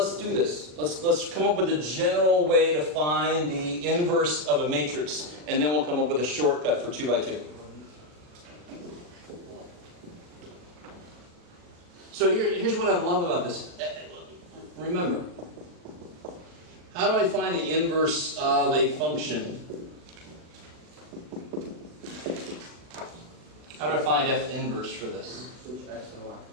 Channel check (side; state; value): left; late; 39 ms